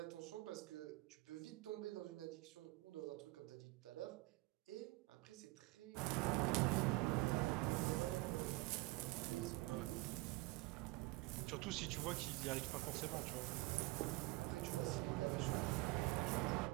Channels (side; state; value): left; quieter; 22.1 dB